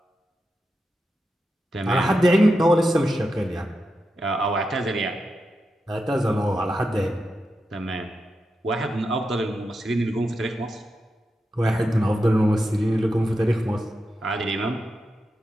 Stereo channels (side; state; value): both; normal; correlation 0.88